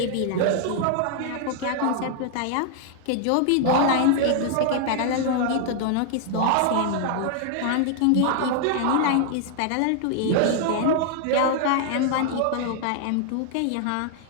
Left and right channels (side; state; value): both; different; correlation 0.00